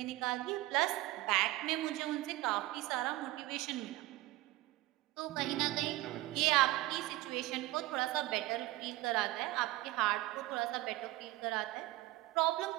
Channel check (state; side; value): quieter; left; 18.2 dB